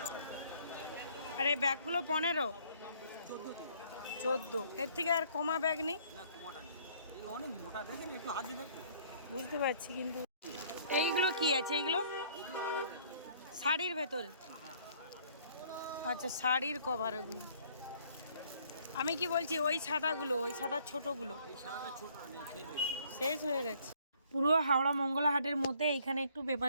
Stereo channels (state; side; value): inverted; both; correlation -0.60